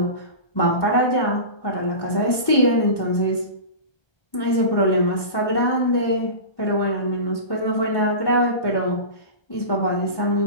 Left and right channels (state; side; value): late; right; 1.1 ms